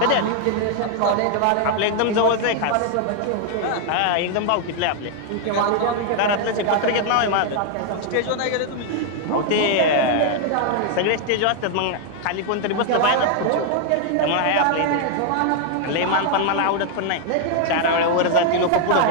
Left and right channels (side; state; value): both; different; correlation 0.00